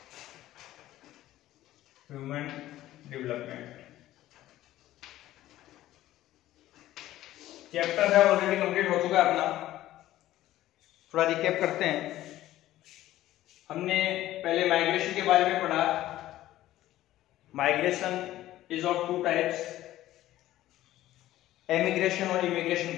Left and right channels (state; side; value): quieter; right; 14.6 dB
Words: human development chapter है ऑलरेडी कंप्लीट हो चुका है अपना। थोड़ा रिकैप करते हैं। हमने पहले माइग्रेशन के बारे में पढ़ा। Migration is of two types, emigration और इमिग्रेशन